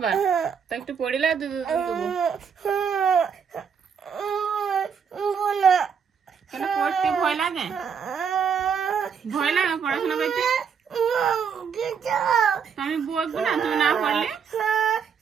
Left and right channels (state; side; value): quieter; left; 6.8 dB